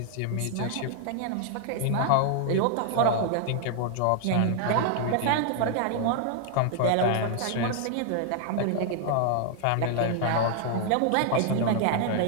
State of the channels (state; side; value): different; both; correlation 0.00